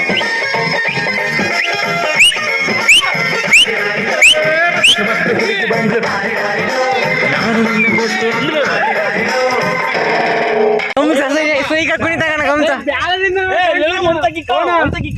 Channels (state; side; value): identical; both; correlation 1.00